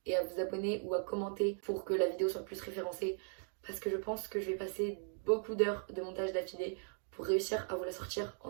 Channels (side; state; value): left; silent; 52 dB below the other